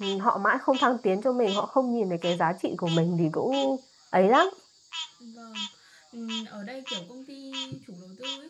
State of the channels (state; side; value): identical; both; correlation 1.00